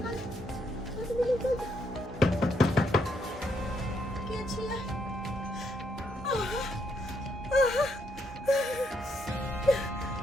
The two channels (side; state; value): both; normal; correlation 0.75